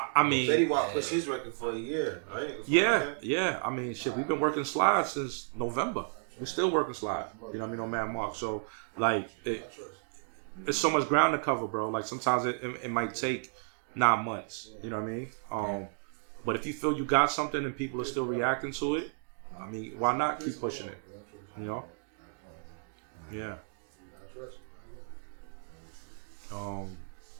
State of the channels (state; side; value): silent; left; digital silence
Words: mean, Fetty Wap pushed his record for a year, right? Yeah. I mean, shit, we've been working slides since November. We're still working slide. You know what I mean? On Man Mark. So, like, it's so much ground to cover, bro. Like, sometimes it might take 9 months. You know what I mean? But if you feel you got something and people are still reacting to it, I mean, why not keep pushing it? You know? Yeah.